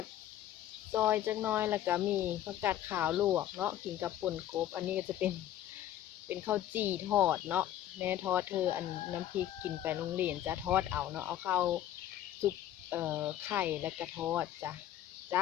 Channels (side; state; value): right; quieter; 12.0 dB